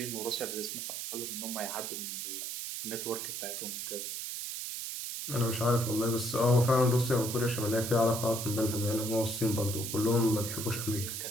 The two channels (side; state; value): right; noise; hiss, 5 dB below the sound